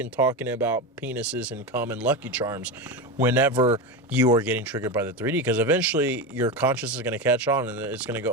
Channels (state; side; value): normal; both; correlation 0.18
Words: talking about penises and cum and Lucky Charms whenever you are getting triggered by the 3D, because eventually your conscience is going to catch on and it's going to